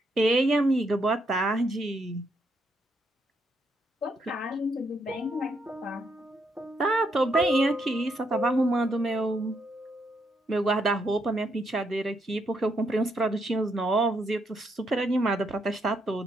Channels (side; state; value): both; normal; correlation 0.77